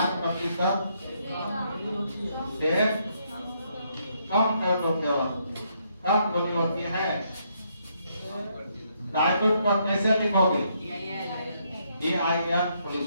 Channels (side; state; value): both; inverted; correlation -0.74